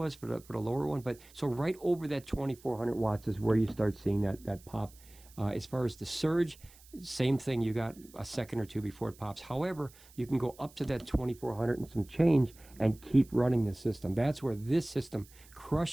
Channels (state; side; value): noise; right; hiss, 24 dB below the sound